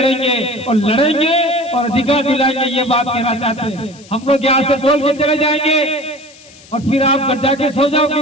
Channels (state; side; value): noise; left; hiss, 23 dB below the sound